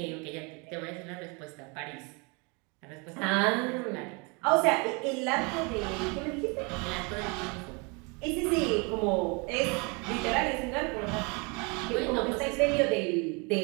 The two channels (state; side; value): quieter; left; 30.9 dB